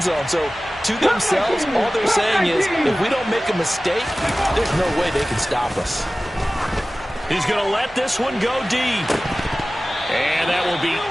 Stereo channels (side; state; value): both; normal; correlation 0.97